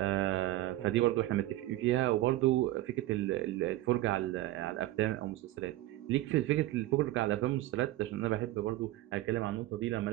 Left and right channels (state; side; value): quieter; left; 16.0 dB